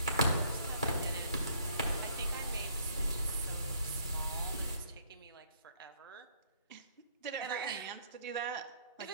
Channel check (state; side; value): inverted; both; correlation -0.65